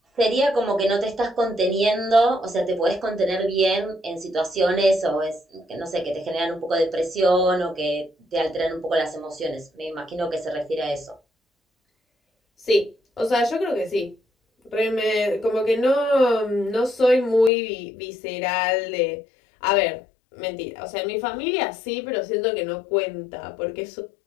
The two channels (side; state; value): right; drops out; at 17.5 s